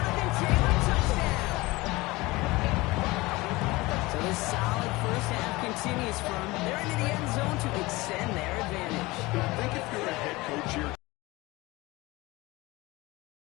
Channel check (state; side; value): quieter; right; 21.4 dB